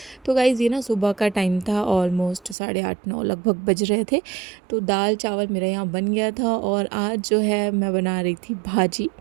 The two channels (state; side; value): drops out; left; at 2.6 s